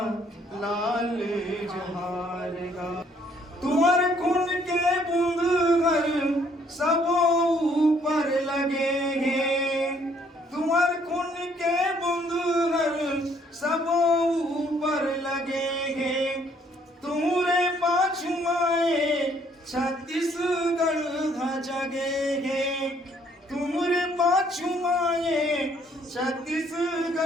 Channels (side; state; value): both; normal; correlation 0.65